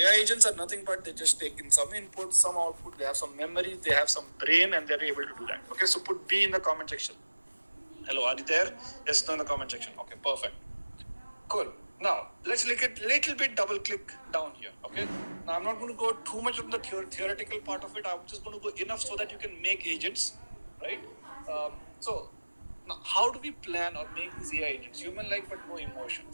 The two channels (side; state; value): both; inverted; correlation -1.00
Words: agents are nothing but they just take in some input, some output, they have some memory, they have some brain, and they're able to do that. Okay, so put B in the comment section. Hello, are you there? Yes, no in the comment section. Okay, perfect. Cool. Now, let's look at little bit double click down here. Okay. Now, I'm not going to go too much on the theoretical part of it. I'm just going to go enough so that you can make agents, right? So, now, how do we plan or make these AI agents? Human-like but no